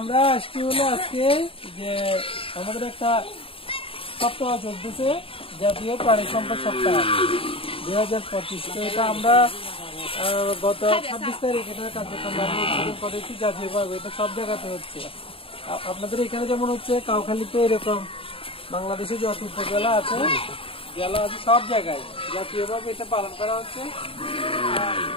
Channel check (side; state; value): right; late; 0.27 ms